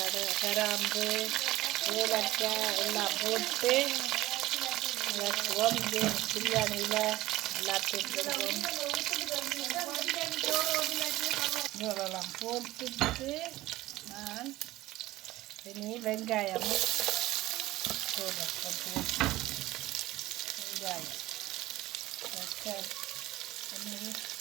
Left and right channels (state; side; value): quieter; left; 17.2 dB